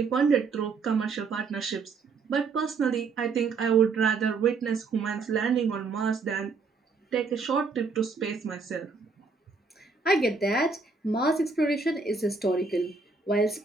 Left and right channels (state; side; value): quieter; left; 4.5 dB